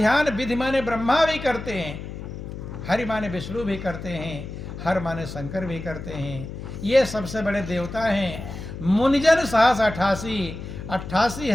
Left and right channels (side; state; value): left; noise; hum, 9 dB below the sound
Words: विधि माने ब्रह्मा भी करते हैं, हरि माने विष्णु भी करते हैं, हर माने शंकर भी करते हैं। ये सबसे बड़े देवता हैं। मुनिजन सहस